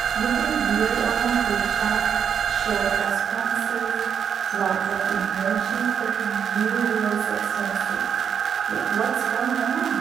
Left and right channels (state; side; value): quieter; left; 7.7 dB